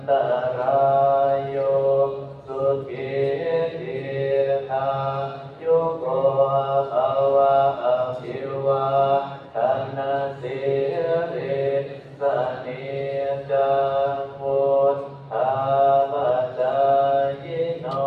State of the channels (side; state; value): both; identical; correlation 1.00